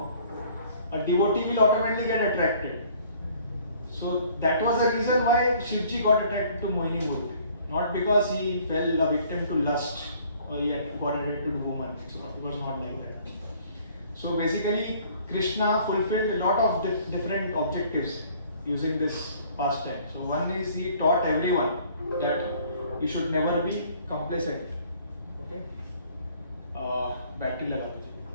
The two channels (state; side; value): inverted; both; correlation -0.57